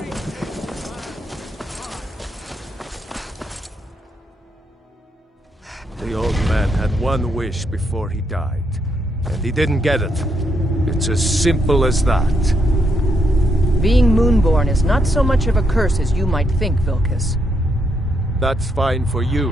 The old man had one wish before he died, and he didn't get it. It's as simple as that. Being Moonborn is not so much of a curse as you might think, Vilcus. That's fine for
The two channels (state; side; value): normal; both; correlation 0.78